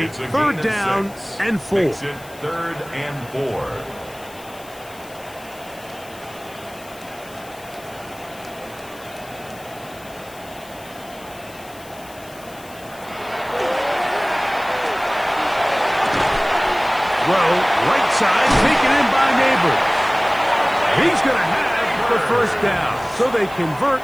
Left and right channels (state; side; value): noise; left; hiss, 21 dB below the sound